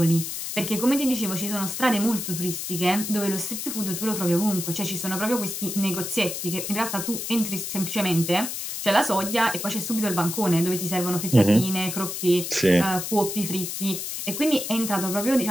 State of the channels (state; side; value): noise; left; hiss, 5 dB below the sound